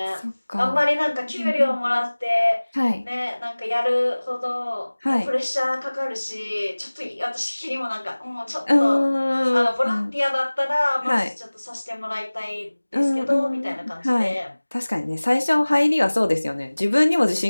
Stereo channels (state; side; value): inverted; both; correlation -1.00